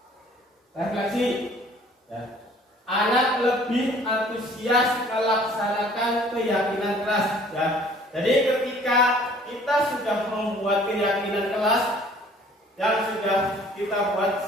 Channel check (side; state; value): both; normal; correlation 0.54